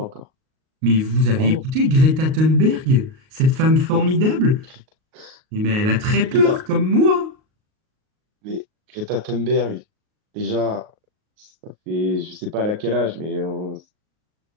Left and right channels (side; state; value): left; late; 38 ms